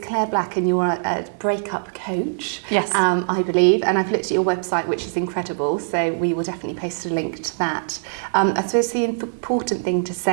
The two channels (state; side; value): silent; left; 59 dB below the other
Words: Black, and you're a breakup coach, Yes. I believe. And I've looked at your website, which is incredible. So we will definitely post a link to that. I suppose the important thing to